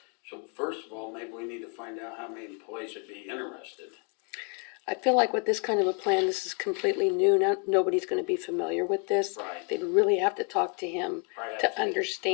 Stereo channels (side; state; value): right; quieter; 38.0 dB